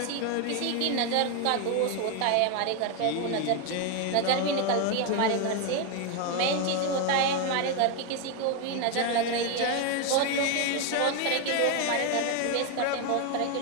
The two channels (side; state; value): both; different; correlation 0.01